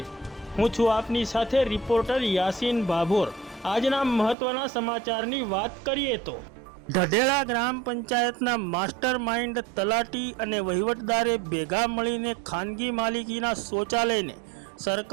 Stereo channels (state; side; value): drops out; left; at 4.4 s